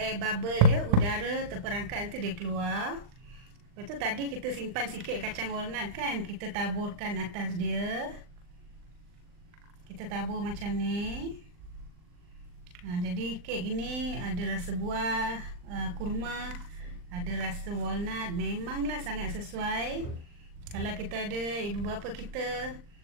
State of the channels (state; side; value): late; left; 39 ms